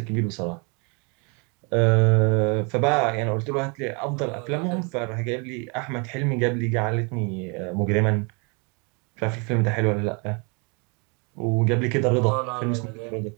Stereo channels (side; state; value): left; quieter; 32.9 dB